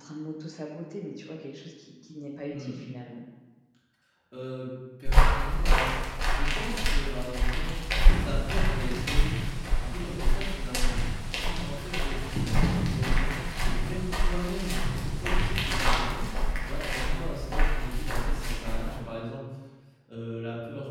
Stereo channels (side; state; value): both; identical; correlation 1.00